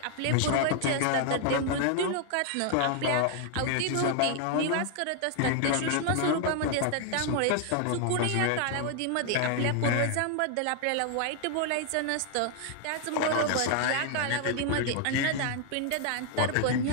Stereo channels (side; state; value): both; different; correlation 0.00